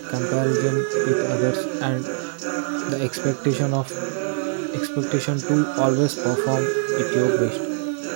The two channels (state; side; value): silent; left; digital silence